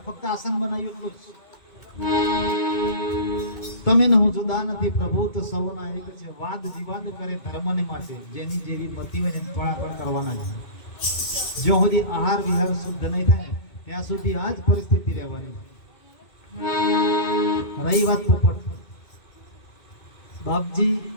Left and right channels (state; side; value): late; right; 2.2 ms